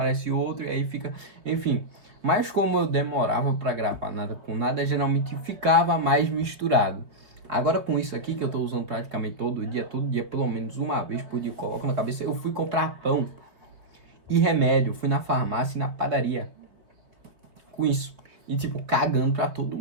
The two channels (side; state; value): left; late; 3.9 ms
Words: outro, e aí fica... Enfim. Mas como eu demorava pra gravar nada com nada, geralmente ficava mais misturado. Agora com isso aqui que eu tô usando praticamente todo dia, pelo menos uma vez por dia, eu coloco na cabeça, eu fui comprar pão e remédio. Fui na farmácia e na padaria com isso. E tipo, cagando pra todo